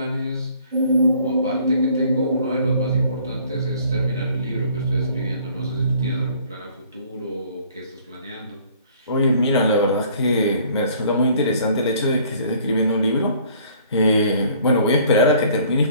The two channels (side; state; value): both; inverted; correlation -0.56